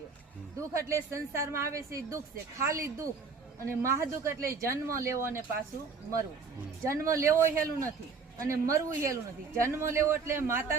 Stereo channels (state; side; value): quieter; left; 5.0 dB